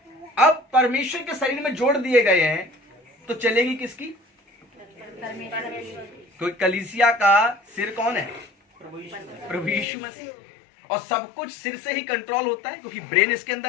अब परमेश्वर के शरीर में जोड़ दिए गए हैं तो चलेगी किसकी? क्योंकि कलीसिया का सिर कौन है? प्रभु यीशु मसीह। और सब कुछ सिर से ही कंट्रोल होता है, क्योंकि ब्रेन इसके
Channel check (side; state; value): right; drops out; at 9.9 s